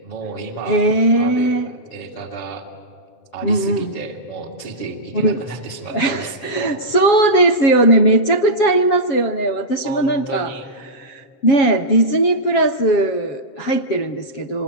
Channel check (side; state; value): right; late; 7.2 ms